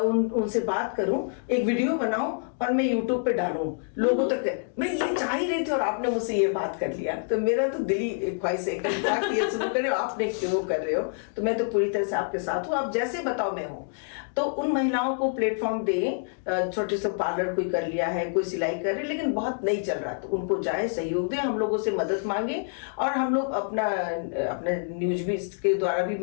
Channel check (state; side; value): silent; right; digital silence